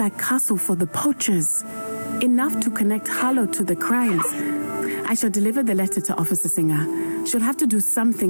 castle for the poachers. Enough to connect Harlow to the crimes. I shall deliver the letter to Officer Singer. She'll have to do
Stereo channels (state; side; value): inverted; both; correlation -1.00